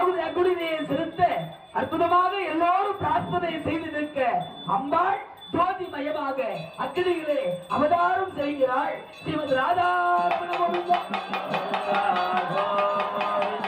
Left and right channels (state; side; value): identical; both; correlation 1.00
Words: அங்குடியை செலுத்த அற்புதமாக எல்லோரும் பிரார்த்தனை செய்து நிற்க அம்பாள் ஜோதிமயமாக அக்கினியிலே அவதாரம் செய்கிறாள் ஸ்ரீமத் ராதா